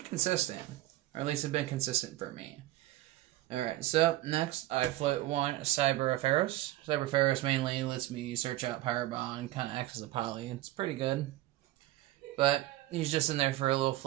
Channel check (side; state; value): left; quieter; 16.3 dB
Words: consistent. Or at least it's been consistent for me. Alright, so next I float 1 Cyber Ferris. Cyber Ferris mainly lets me search out Power Bond, kind of acts as a poly. It's pretty good. But he's just in there for a little